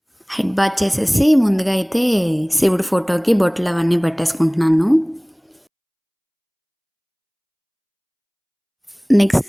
హెడ్ బాత్ చేసేసి ముందుగా అయితే శివుడి ఫోటోకి బొట్లు అవన్నీ పెట్టేసుకుంటున్నాను. నెక్స్ట్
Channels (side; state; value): both; identical; correlation 1.00